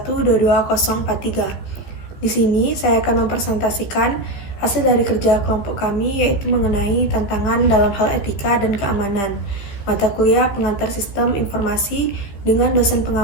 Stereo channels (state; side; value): late; right; 15 ms